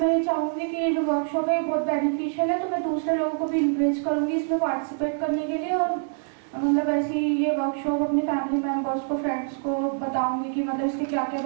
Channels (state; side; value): silent; left; 61 dB below the other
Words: चाहूँगी कि ये जो वर्कशॉप है बहुत बेनिफिशियल है, तो मैं दूसरे लोगों को भी इंकरेज करूँगी इसमें पार्टिसिपेट करने के लिए। और ऐसी ये वर्कशॉप अपने फैमिली मेम्बर्स को, फ्रेंड्स को बताऊँगी कि इसके क्या क्या